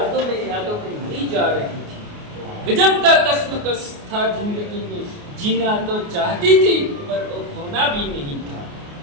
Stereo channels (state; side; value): late; left; 29 ms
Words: में मरी जा रही थी। गजब का कश्मकश था जिंदगी में, जीना तो चाहती थी पर वो खोना भी नहीं था।